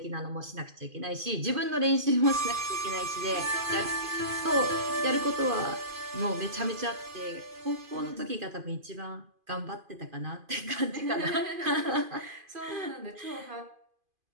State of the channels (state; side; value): late; left; 2.5 ms